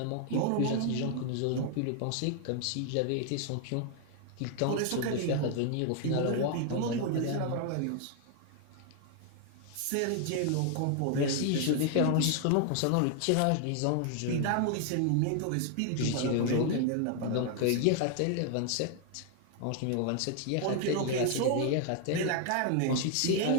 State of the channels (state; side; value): different; both; correlation 0.00